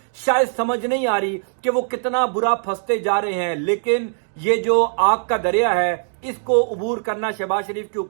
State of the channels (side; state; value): left; silent; digital silence